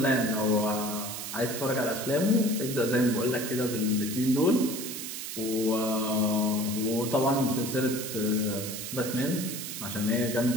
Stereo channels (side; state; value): right; noise; hiss, 7 dB below the sound